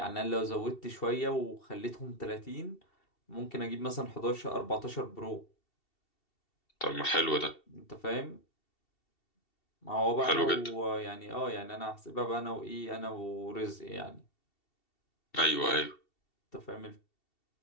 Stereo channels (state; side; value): late; right; 2.7 ms